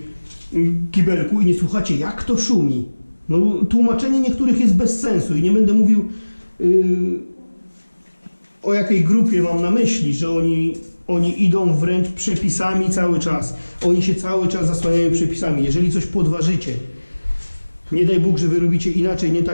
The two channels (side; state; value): both; inverted; correlation -1.00